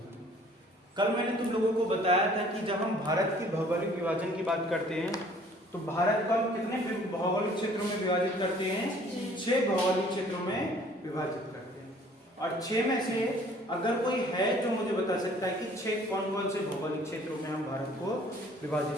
कल मैंने तुम लोगों को बताया था कि जब हम भारत के भौगोलिक विभाजन की बात करते हैं तो भारत को कितने भौगोलिक क्षेत्रों में विभाजित करते हैं? 6 भौगोलिक क्षेत्रों में विभाजित करते हैं। और 6 में से अगर कोई है जो मुझे बता सकता है कि 6 कौन कौन से भौगोलिक क्षेत्रों में हम भारत को विभाजित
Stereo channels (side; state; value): both; normal; correlation 0.55